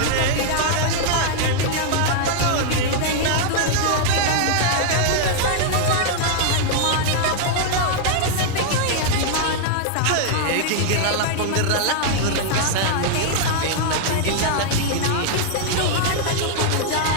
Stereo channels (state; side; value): different; both; correlation -0.01